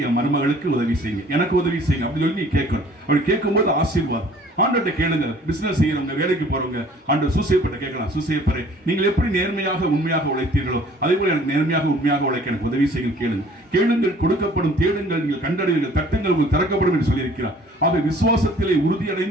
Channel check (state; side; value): normal; both; correlation 0.53